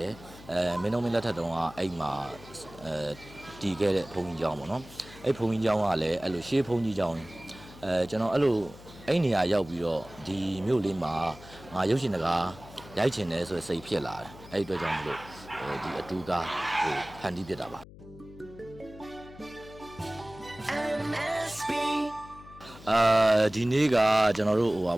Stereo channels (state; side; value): noise; left; hum, 18 dB below the sound